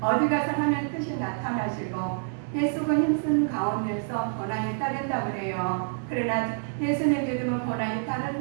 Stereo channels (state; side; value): silent; left; digital silence